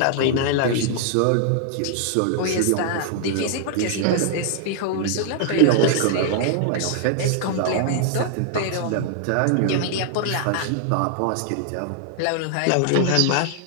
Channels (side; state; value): both; different; correlation -0.01